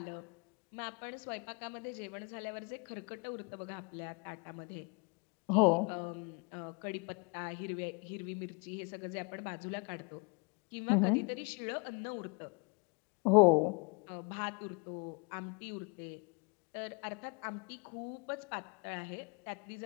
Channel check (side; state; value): right; quieter; 32.5 dB